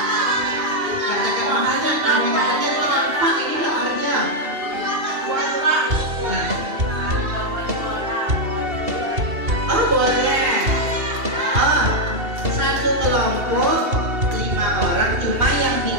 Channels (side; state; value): left; late; 2.8 ms